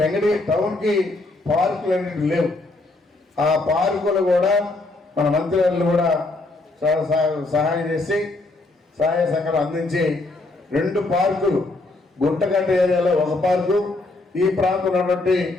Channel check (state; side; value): quieter; right; 3.0 dB